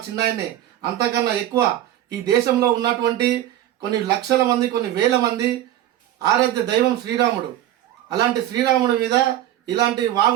చిన్నాయన్నే. అంతకన్నా ఎక్కువ ఈ దేశంలో ఉన్నటువంటి కొన్ని లక్షల మంది, కొన్ని వేల మంది ఆరాధ్య దైవం శ్రీరాముడు. అలాంటి శ్రీరాముడి మీద ఇలాంటి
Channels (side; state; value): left; quieter; 12.9 dB